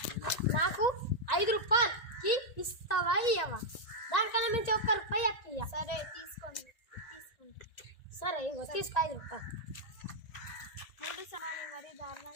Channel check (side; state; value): right; late; 1.9 ms